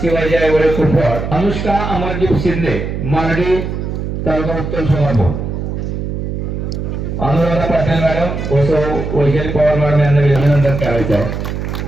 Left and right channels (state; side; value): noise; right; hum, 4 dB below the sound